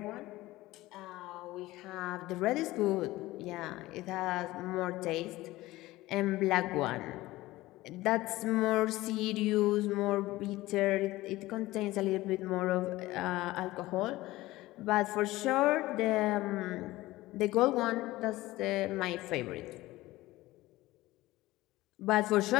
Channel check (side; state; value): right; quieter; 18.0 dB